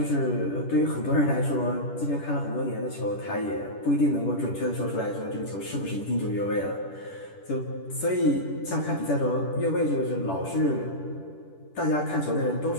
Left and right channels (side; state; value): right; late; 10 ms